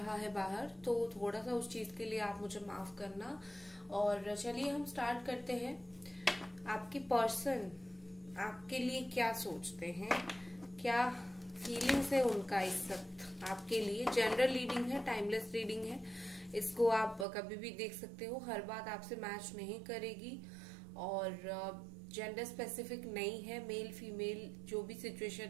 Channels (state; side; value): drops out; left; at 17.2 s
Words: है बाहर, तो थोड़ा सा उस चीज के लिए आप मुझे माफ करना। और चलिए हम स्टार्ट करते हैं। आपकी पर्सन आपके लिए क्या सोचते हैं, क्या फीलिंग्स है उनका इस वक्त आपके लिए। जनरल रीडिंग है, टाइमलेस रीडिंग है, इसको आप कभी भी देख सकते हो। हर बात आपसे मैच नहीं करेगी और जेंडर स्पेसिफिक नहीं है। मेल फीमेल जो भी